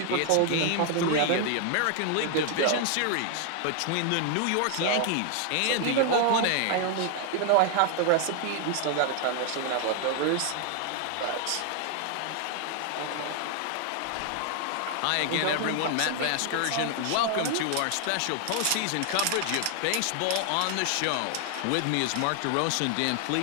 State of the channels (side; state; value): both; different; correlation 0.00